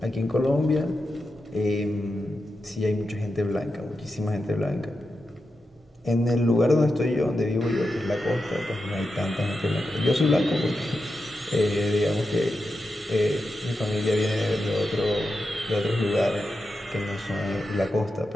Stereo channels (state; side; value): normal; both; correlation 0.88